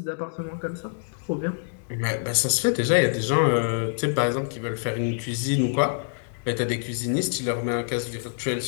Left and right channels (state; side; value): silent; right; 60 dB below the other